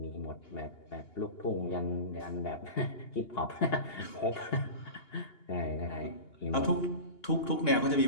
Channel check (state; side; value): late; right; 2.8 ms